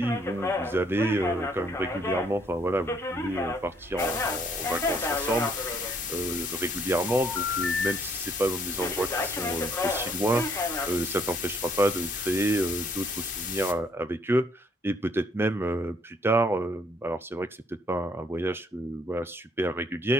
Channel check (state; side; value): normal; both; correlation 0.66